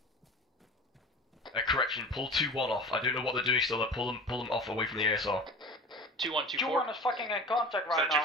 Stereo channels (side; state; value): both; normal; correlation 0.36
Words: Correction, pull 2-1 off. I don't know what they're doing still. Pull them off away from the ASR. 2-1, 2-4. 2-1 is fucking in contact right now.